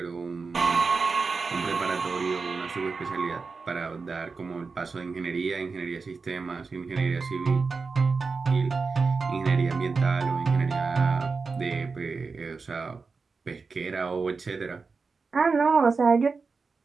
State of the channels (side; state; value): left; quieter; 4.6 dB